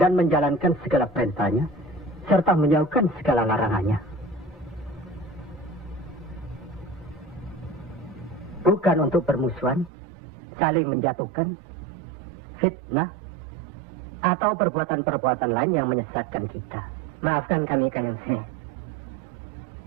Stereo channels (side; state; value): left; drops out; at 9.9 s